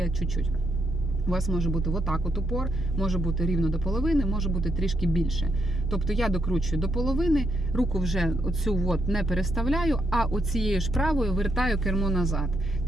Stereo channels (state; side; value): normal; both; correlation 0.77